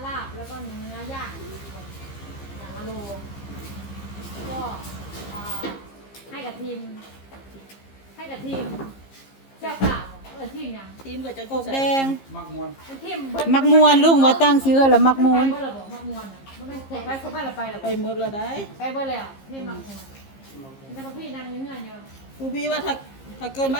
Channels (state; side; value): late; right; 15 ms